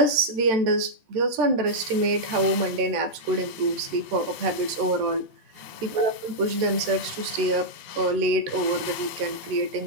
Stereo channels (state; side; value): late; left; 13 ms